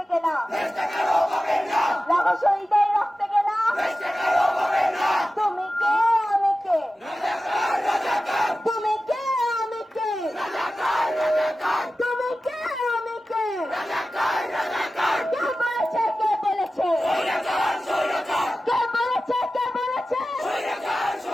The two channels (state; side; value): normal; both; correlation 0.94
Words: কেনা রহস্যদের রক্তে কেনা তুমি কে আমি কে তুমি কে আমি কে তুমি কে আমি কে কে বলেছে কে বলেছে কে বলেছে কে বলেছে